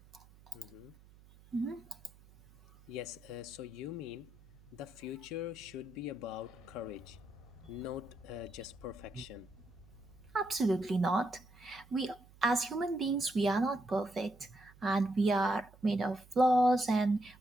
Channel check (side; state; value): right; noise; hum, 24 dB below the sound